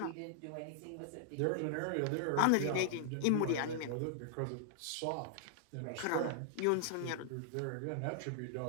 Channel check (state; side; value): different; both; correlation -0.01